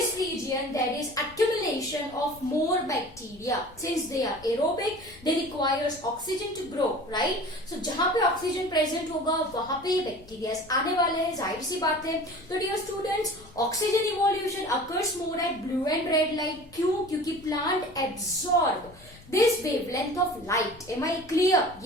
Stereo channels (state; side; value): noise; left; rumble, 23 dB below the sound